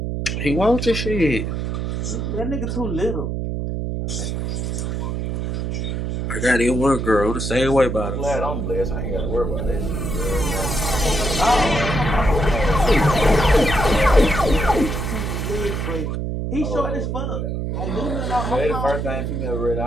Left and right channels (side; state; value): right; noise; hum, 2 dB below the sound